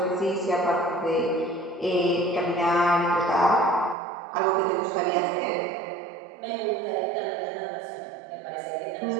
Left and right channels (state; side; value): drops out; left; at 4.0 s